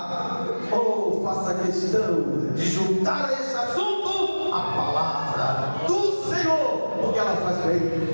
ou faça questão de juntar a esse assunto a palavra do Senhor, porque ela faz bem,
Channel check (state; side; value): inverted; both; correlation -1.00